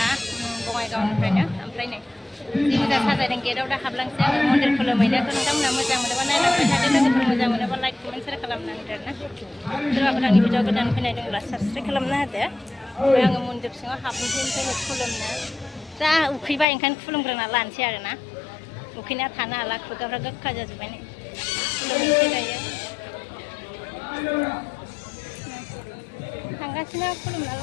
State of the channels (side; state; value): right; drops out; at 16.7 s